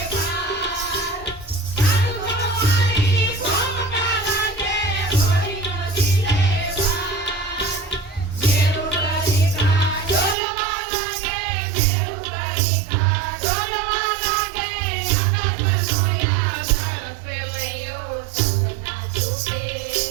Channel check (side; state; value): left; drops out; at 10.4 s